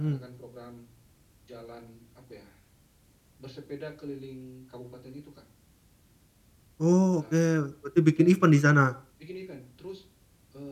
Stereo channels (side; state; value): both; identical; correlation 1.00